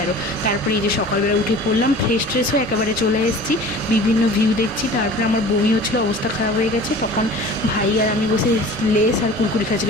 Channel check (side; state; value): both; normal; correlation 0.42